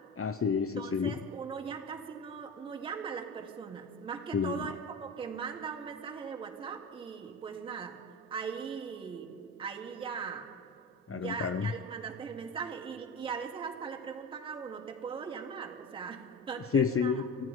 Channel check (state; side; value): normal; both; correlation 0.29